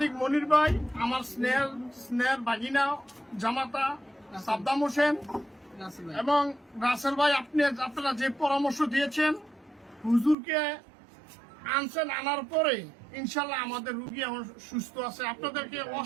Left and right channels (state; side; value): drops out; left; at 10.4 s